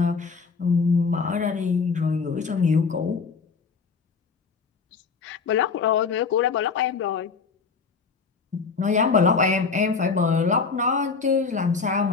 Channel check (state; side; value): quieter; right; 5.1 dB